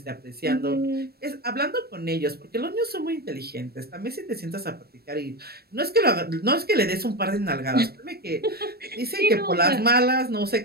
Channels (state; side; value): late; left; 0.46 ms